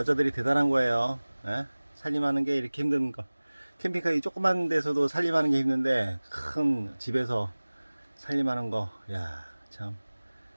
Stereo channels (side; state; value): both; inverted; correlation -1.00